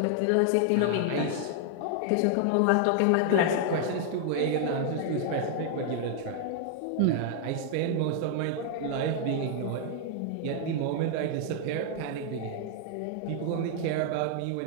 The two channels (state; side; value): different; both; correlation 0.00